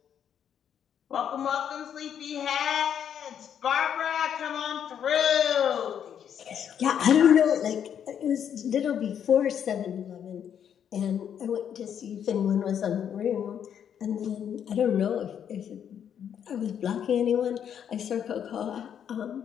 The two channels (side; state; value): right; quieter; 8.8 dB